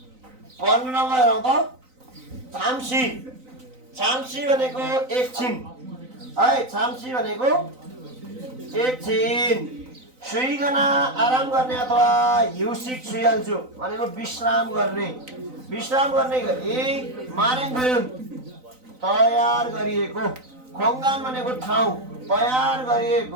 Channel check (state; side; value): late; left; 3.9 ms